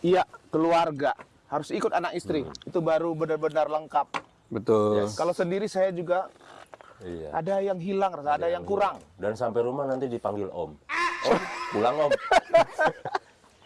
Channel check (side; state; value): both; identical; correlation 1.00